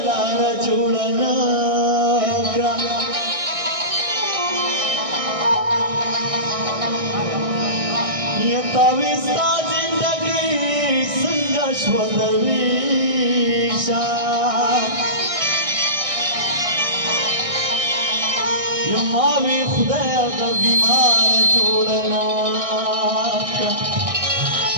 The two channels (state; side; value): late; left; 1.6 ms